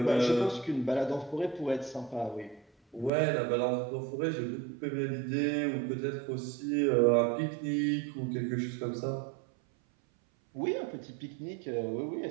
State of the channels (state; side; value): drops out; left; at 3.1 s